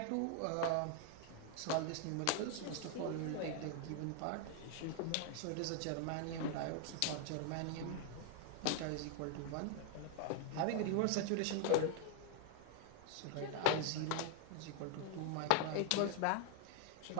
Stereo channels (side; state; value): both; different; correlation 0.01